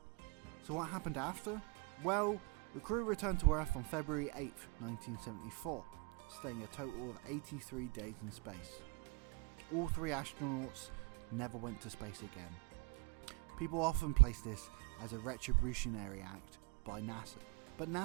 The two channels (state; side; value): quieter; left; 24.4 dB